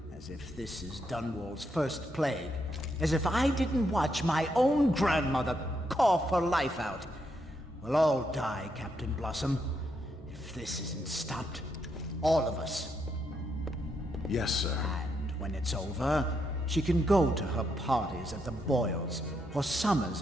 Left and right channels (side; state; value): both; normal; correlation 0.79